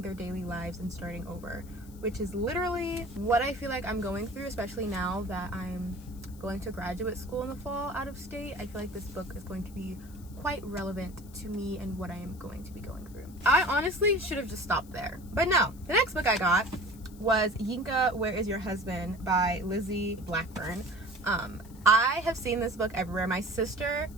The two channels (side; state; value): left; noise; hiss, 24 dB below the sound